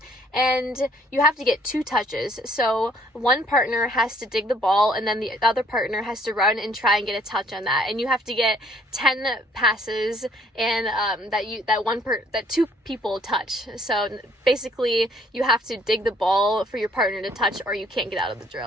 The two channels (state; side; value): normal; both; correlation 0.61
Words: and you have to get 2 touches. So one partner has to dig the ball, and then the other partner has to run and try and get a touch on that, and you have to get 10 passes, and that 2 people touch. So basically you have to dig the ball for your partner to touch, or you can't get out of the